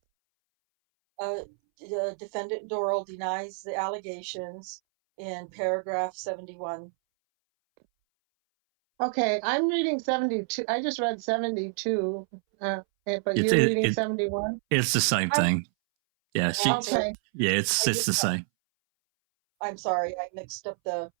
Defendant Dorrel denies the allegations in paragraph 71. Okay, I'm reading 72. I just read 72, but It's- you're reading 71? It's the same thing. Yeah, Okay. yeah, it's the same. I'm sorry, I mixed up it's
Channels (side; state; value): left; silent; 59 dB below the other